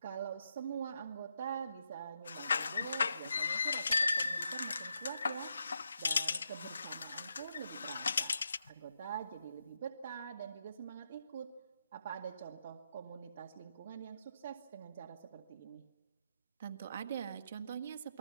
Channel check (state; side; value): inverted; both; correlation -0.83